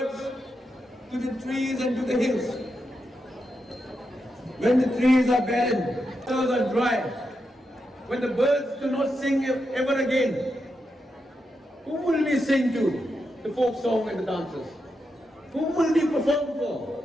to the trees and to the hills. When the trees are barren, others are dry, when the birds do not sing ever again, who will we sing to? The folk song and the dances. Who will we perform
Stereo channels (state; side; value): normal; both; correlation 0.86